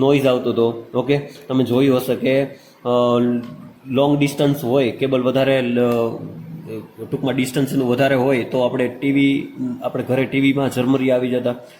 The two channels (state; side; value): identical; both; correlation 1.00